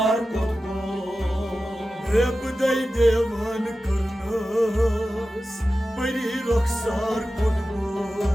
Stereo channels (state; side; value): normal; both; correlation 0.94